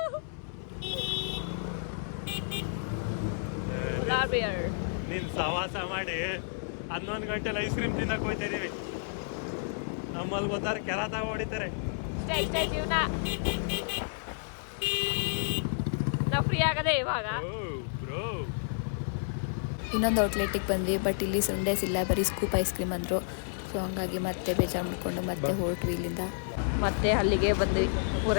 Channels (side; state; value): right; silent; digital silence